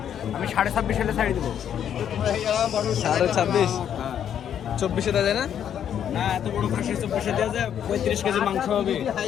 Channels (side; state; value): right; quieter; 9.3 dB